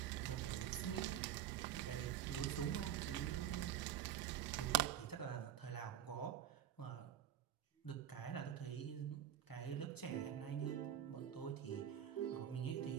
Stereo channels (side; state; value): left; quieter; 10.4 dB